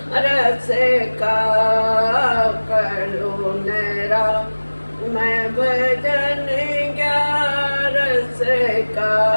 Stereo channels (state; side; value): inverted; both; correlation -1.00